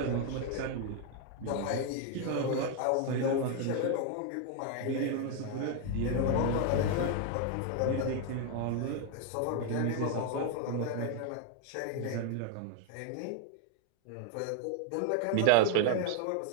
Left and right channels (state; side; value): different; both; correlation 0.01